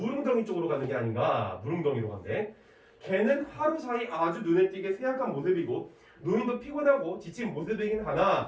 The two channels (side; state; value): both; identical; correlation 1.00